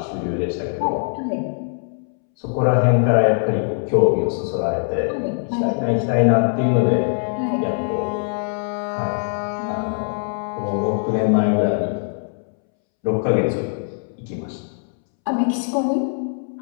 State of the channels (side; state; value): right; silent; 65 dB below the other